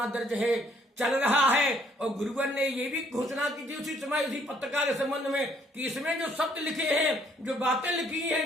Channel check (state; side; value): normal; both; correlation 0.65